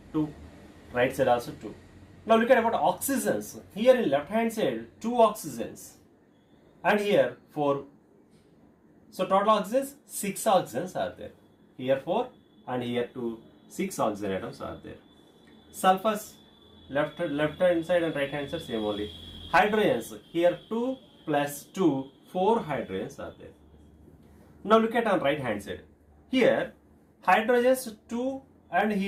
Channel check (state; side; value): identical; both; correlation 1.00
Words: 2, right side also 2. Now look at about oxygens. Here in left hand side 2 oxygens and here 4. So total oxygens 6 oxygens are there. Here 4 and here 2, 6 oxygen atoms are there. Sulfurs left hand side and right hand side same only. Hydrogens here 2 plus 2, 4 hydrogens are there. Now look at on right hand side. Here hydrogens 2 and